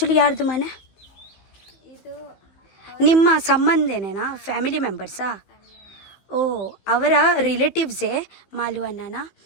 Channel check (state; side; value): late; right; 15 ms